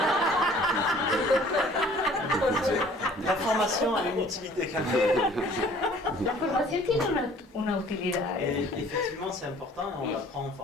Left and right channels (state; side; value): normal; both; correlation 0.53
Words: La formación a una utilité quand même. La formación tiene una utilidad. Effectivement, c'est important, on l'apprend en